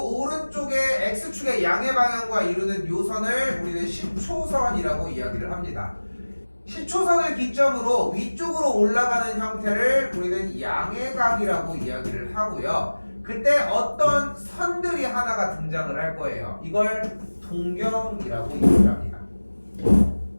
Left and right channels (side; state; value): both; inverted; correlation -1.00